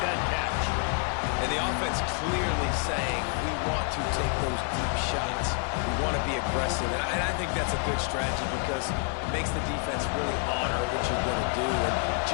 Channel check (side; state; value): right; quieter; 39.0 dB